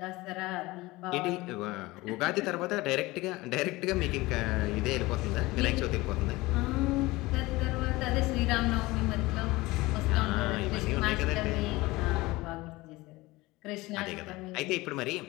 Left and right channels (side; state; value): right; quieter; 20.6 dB